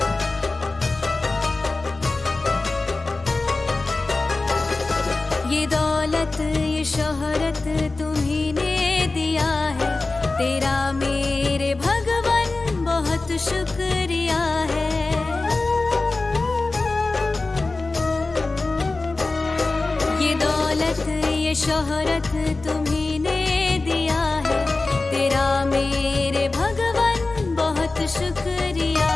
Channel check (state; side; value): quieter; right; 3.4 dB